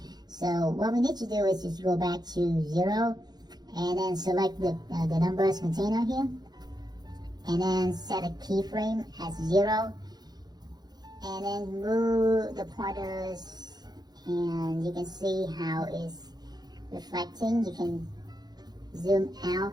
So what we need to do is just go back to 0 and then select the numbers container here, and then set a keyframe as 0, and then move the pointers, and you can see how it's reflecting. You can zoom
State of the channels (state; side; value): late; left; 0.20 ms